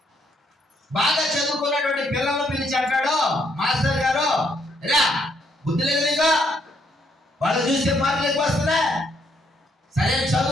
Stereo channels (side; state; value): both; normal; correlation 0.72